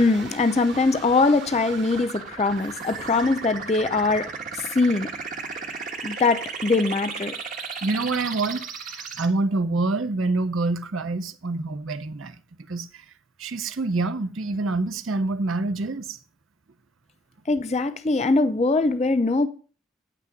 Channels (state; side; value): normal; both; correlation 0.54